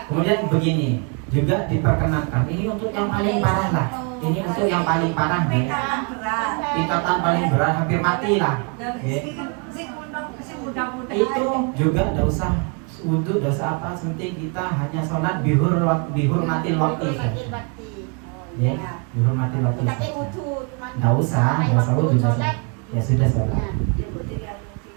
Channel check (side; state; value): left; quieter; 34.7 dB